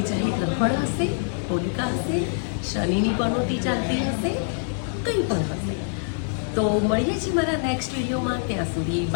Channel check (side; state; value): right; silent; digital silence